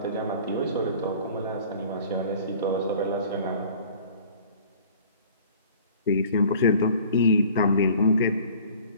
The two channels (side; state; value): both; inverted; correlation -0.48